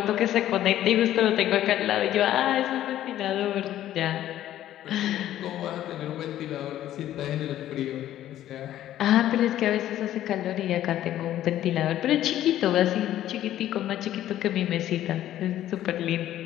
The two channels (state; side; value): quieter; right; 12.7 dB